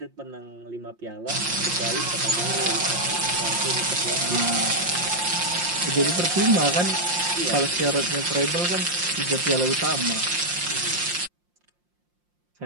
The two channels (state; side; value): late; left; 5.7 ms